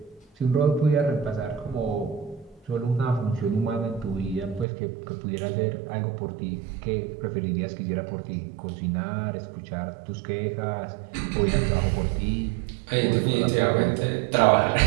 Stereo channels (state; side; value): drops out; left; at 4.7 s